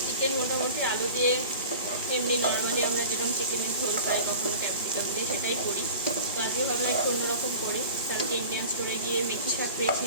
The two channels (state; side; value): inverted; both; correlation -0.40